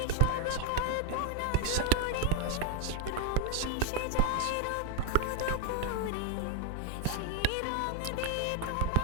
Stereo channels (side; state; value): both; different; correlation 0.00